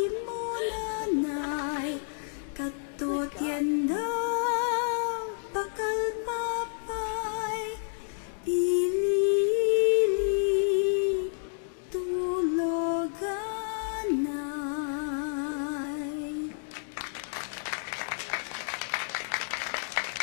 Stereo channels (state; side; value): silent; right; digital silence